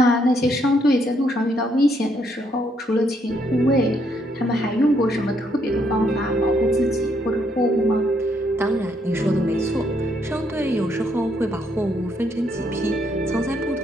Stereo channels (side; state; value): both; normal; correlation 0.73